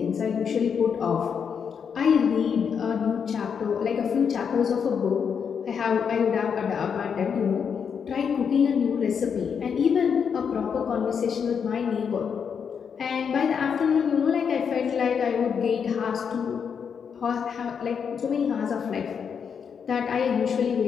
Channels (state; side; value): quieter; right; 6.9 dB